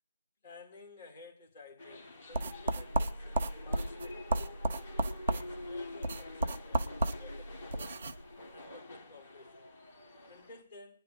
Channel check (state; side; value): inverted; both; correlation -0.79